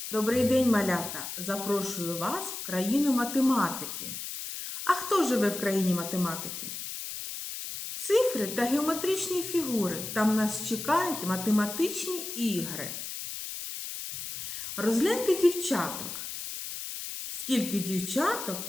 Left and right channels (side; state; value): left; noise; hiss, 7 dB below the sound